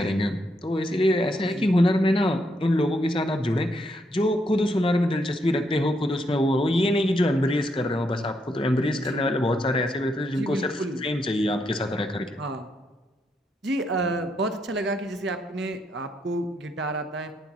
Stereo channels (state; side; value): normal; both; correlation 0.78